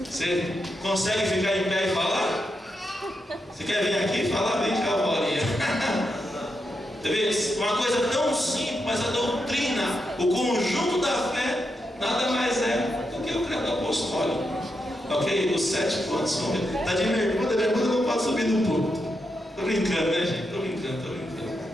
Você consegue ficar em pé e falar? Você quer vir aqui e falar? Vem cá, Paulinho. Uma coisa tão simples, mas a doutrina, o conjunto da fé, nada mais é 7 pontos. Está de bermuda, não pode subir no púlpito. Estou brincando, né, gente? Estou brincando.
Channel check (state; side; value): normal; both; correlation 0.84